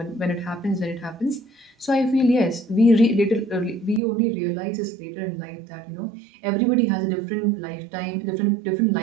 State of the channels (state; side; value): drops out; left; at 4.0 s